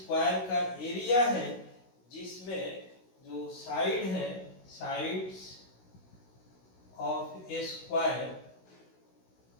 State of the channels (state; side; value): late; right; 16 ms